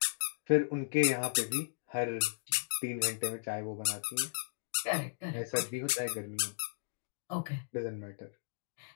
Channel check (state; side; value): silent; right; digital silence